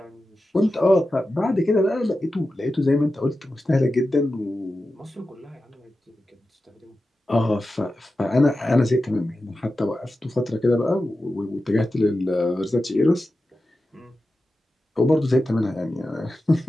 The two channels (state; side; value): normal; both; correlation 0.92